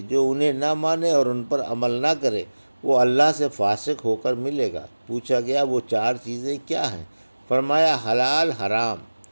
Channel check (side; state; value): both; inverted; correlation -1.00